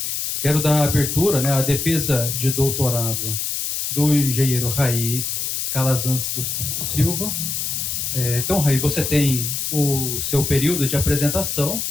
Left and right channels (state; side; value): noise; left; hiss, 2 dB below the sound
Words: Quero dar abertura, à defesa de doutorado do engenheiro Raí Calazans dos Santos Silva. Então, Raí, você tem o seu período de apresentação.